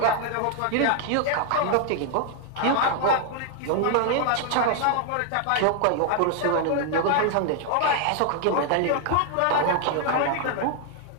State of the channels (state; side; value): different; both; correlation 0.00